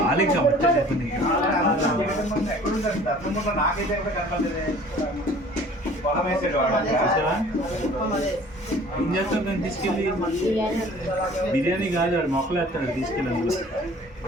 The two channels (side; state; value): both; normal; correlation 0.49